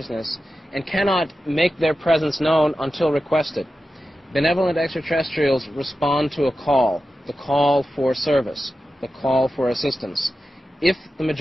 and cannot make their presence known until requested. Benevolent extraterrestrials respond to a call, the call for service, the call for assistance. If the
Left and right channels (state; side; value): normal; both; correlation 0.92